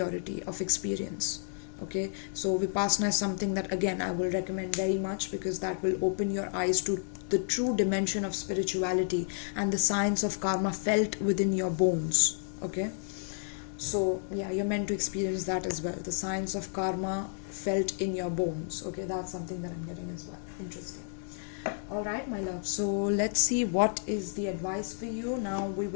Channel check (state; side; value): silent; right; 57 dB below the other